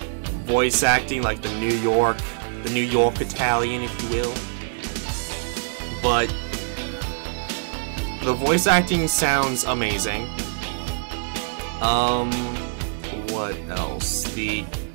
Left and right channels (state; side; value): silent; left; 63 dB below the other